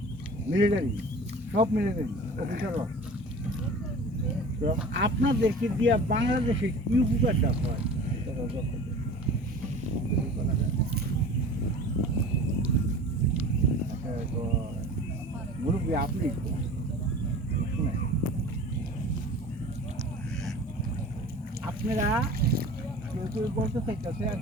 মিলিটারি সব মিলিটারি অফিসাররা তো আপনাদেরকে দিয়ে বাংলাদেশে কি উপকারটা হয় মুরব্বী আপনি শুনেন আপনারা কেউ কেউ বলতে চাইতেছে আর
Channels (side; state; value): both; normal; correlation 0.39